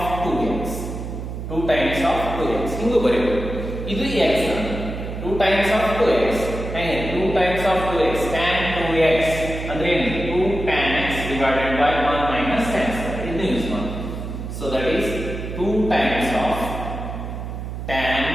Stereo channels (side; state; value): right; noise; hum, 7 dB below the sound